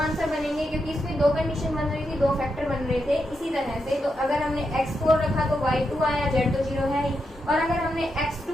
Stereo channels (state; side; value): normal; both; correlation 0.84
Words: बनेंगे क्योंकि इसमें दो कंडीशन बन रही थी, दो फैक्टर बन रहे थे। इसी तरह से तो अगर हमने x4 रखा तो y2 आया, z तो 0 है ही, और अगर हमने